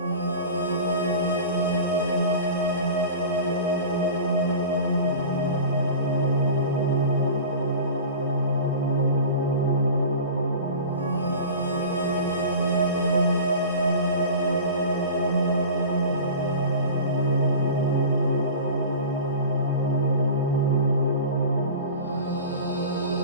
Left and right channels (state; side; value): inverted; both; correlation -0.35